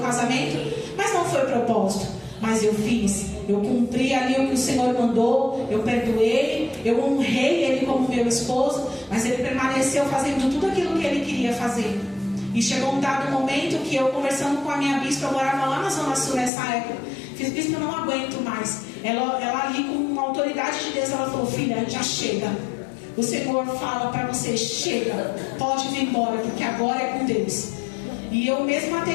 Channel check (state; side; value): drops out; right; at 16.5 s